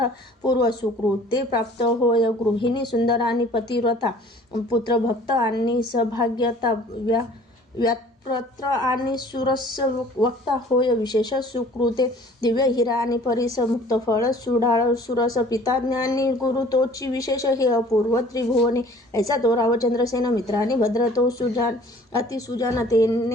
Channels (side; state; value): both; normal; correlation 0.51